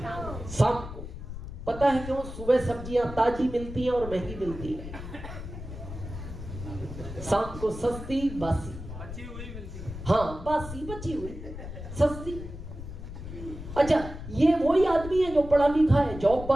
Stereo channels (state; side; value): noise; left; rumble, 10 dB below the sound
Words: को। पता है क्यों? सुबह सब्जियां ताजी मिलती हैं और महंगी मिलती है, शाम को सस्ती बासी बची हुई मिलती है। हाँ, बासी बची हुई सस्ती। अच्छा, ये वही आदमी है जो पढ़ा लिखा है, जॉब